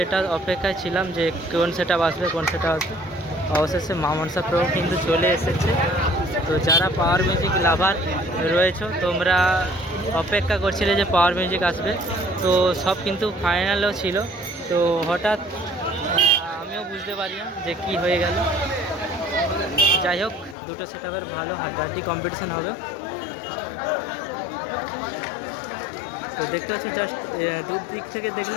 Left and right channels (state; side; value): drops out; right; at 20.6 s